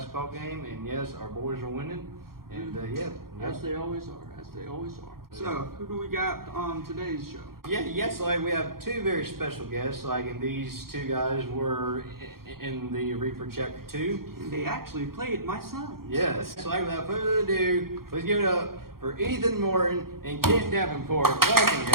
game, and yes, our boys are winning. And As they always are, as they always are. So, who do we got on today's show? Yes, like we have two very special guests. And these two guys were in the Reaper Chapter 2. They actually played my son. Yes. So without further ado, let's give it up for Ethan Morton and Kent Davenport. Welcome,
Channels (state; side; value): late; left; 0.93 ms